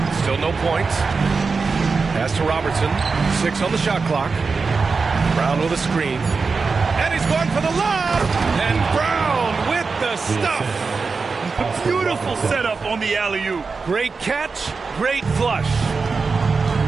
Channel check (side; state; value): left; quieter; 4.6 dB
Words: Still no points. Pass to Robertson. 6 on the shot clock. Brown with a screen. And he's going for the lob. And Brown with the stuff. A beautiful setup on the alley-oop. Great catch. Great flush.